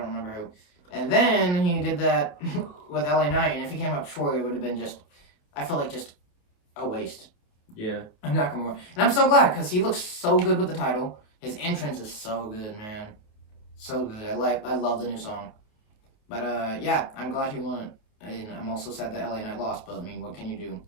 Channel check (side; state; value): right; late; 28 ms